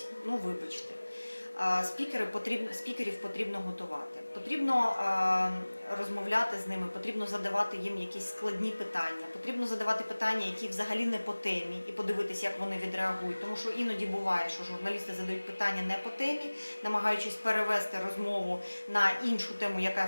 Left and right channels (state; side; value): inverted; both; correlation -1.00